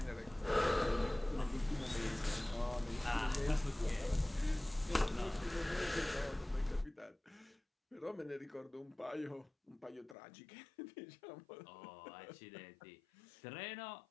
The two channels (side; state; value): right; drops out; at 10.2 s